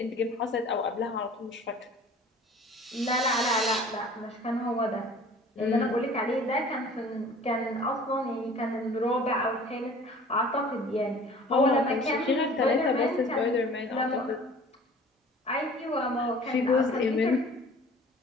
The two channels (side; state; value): both; normal; correlation 0.47